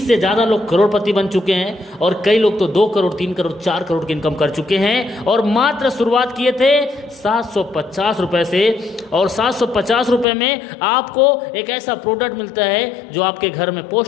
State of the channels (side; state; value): right; drops out; at 10.2 s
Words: से ज़्यादा लोग करोड़पति बन चुके हैं, और कई लोग तो 2 करोड़, 3 करोड़, 4 करोड़ की इनकम कर चुके हैं। और मात्र शुरुआत किए थे 750 रुपये से, और 750 रुपये में आपको एक ऐसा प्रोडक्ट मिलता है जो आपके घर में